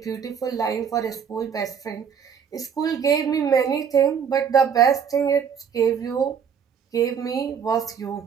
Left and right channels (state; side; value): quieter; left; 7.2 dB